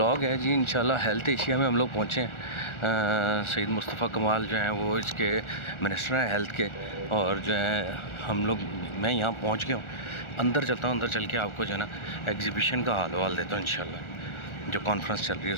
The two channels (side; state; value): right; late; 1.4 ms